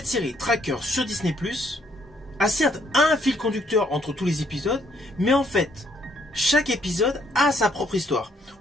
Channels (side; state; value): both; normal; correlation 0.68